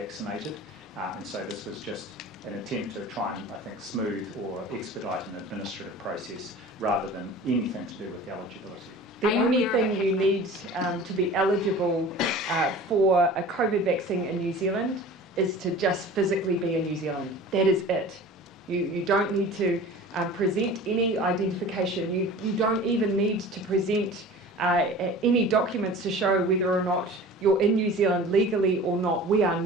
And so this was just an attempt to try and, I think, smooth or expedite an administrative process rather than anything to do with eligibility. The only thing you need to be eligible for a COVID vaccine in New Zealand is to just physically be in New Zealand. That is it. You don't need to present any identification. You don't even need to present any documents to show whether or not you're in New Zealand legally or not. We are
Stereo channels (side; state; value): both; normal; correlation 0.40